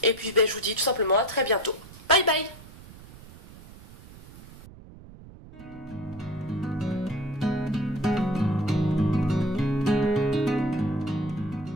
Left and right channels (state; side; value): noise; right; rumble, 19 dB below the sound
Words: Et puis ben, je vous dis tout simplement à très bientôt. Bye bye.